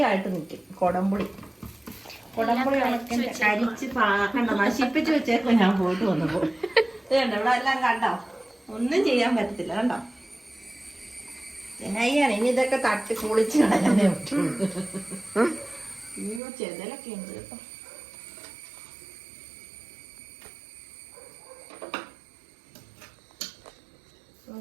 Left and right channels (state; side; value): drops out; left; at 16.4 s